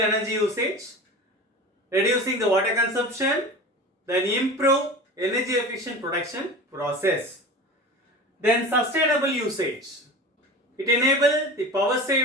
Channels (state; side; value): normal; both; correlation 0.33